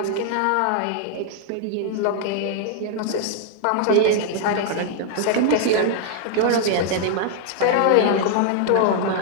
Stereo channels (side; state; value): both; different; correlation 0.00